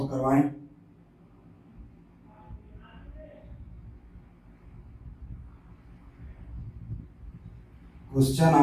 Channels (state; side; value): identical; both; correlation 1.00